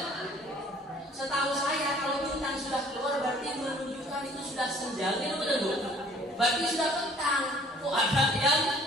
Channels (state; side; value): normal; both; correlation 0.55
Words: Setahu saya kalau bintang sudah keluar berarti menunjukkan itu sudah senja. Betul. Berarti sudah petang. Kok ada yang